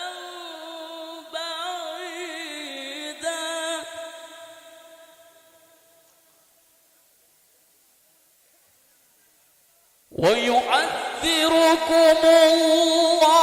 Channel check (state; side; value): identical; both; correlation 1.00